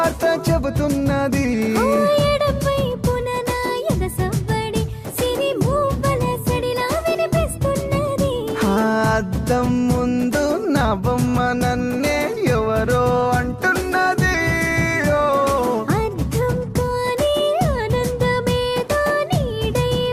చెబుతున్నది ఓ ఎడమవైపున నా ఎగసవ్వడి సిరి మూవల సడిలా వినిపిస్తున్నది ఆ అద్దం ముందు నా బొమ్మ నన్నే ఎవరో అంటున్నది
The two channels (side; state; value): both; identical; correlation 1.00